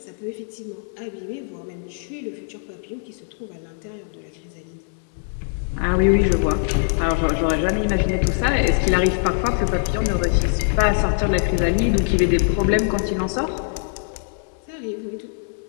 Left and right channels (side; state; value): right; silent; 64 dB below the other